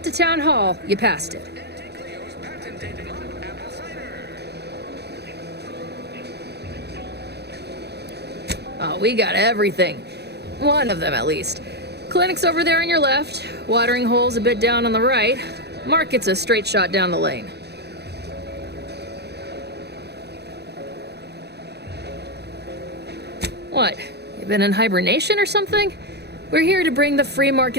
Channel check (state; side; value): late; left; 0.48 ms